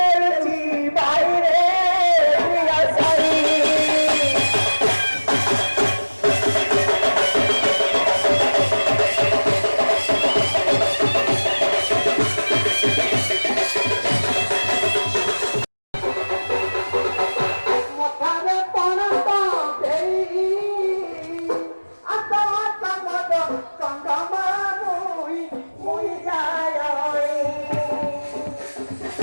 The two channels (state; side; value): inverted; both; correlation -1.00